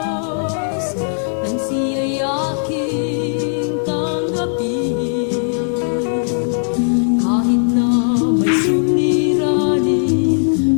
nang siya'y aking tanggapin. Kahit na may suliranin,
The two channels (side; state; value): right; silent; digital silence